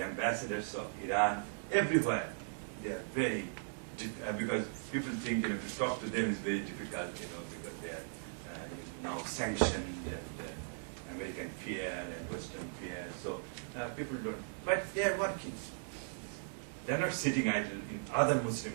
ambassadors of Iran, everywhere, they are very, because people think, to talk to them is very difficult, because they are now sanctioned and American fear and Western fear. So people don't, but they are working. They're not sitting idle in other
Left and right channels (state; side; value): silent; left; 52 dB below the other